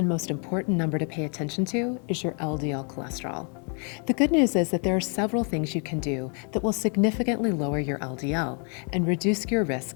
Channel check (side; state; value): right; quieter; 39.4 dB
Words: most important number to pay attention to is your LDL cholesterol. The good news is that there are several things you can do that will significantly lower your LDL and reduce your